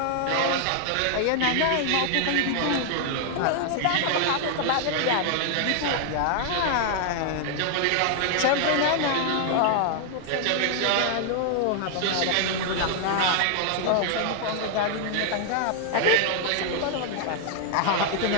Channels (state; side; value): different; both; correlation 0.00